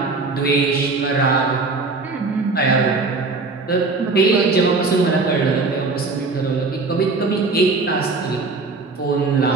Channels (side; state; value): left; quieter; 3.8 dB